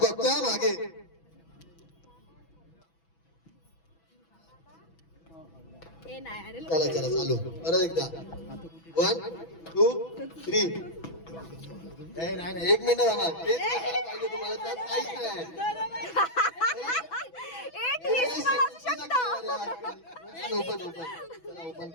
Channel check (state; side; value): late; right; 6.1 ms